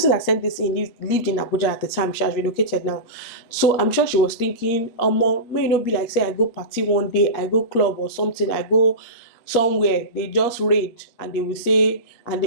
that sent this in lived in Abuja at the time. She has relocated now, so I'm sure she was thinking, may not be like, say I go party one day, I go club or something, I go somewhere, they just raid and they will say,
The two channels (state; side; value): late; right; 8.5 ms